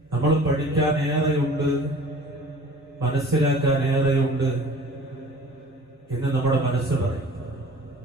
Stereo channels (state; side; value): normal; both; correlation 0.46